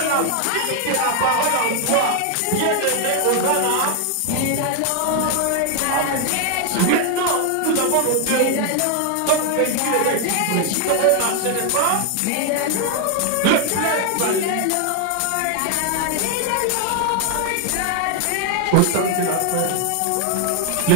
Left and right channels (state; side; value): different; both; correlation 0.00